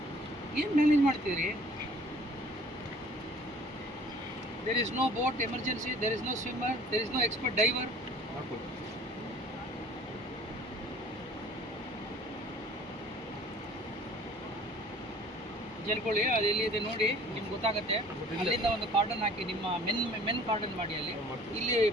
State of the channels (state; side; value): normal; both; correlation 0.51